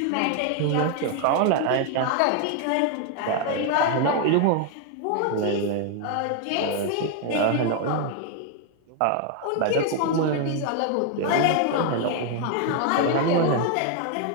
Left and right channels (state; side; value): different; both; correlation 0.00